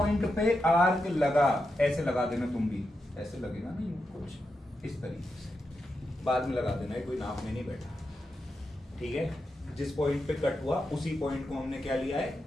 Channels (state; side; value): normal; both; correlation 0.87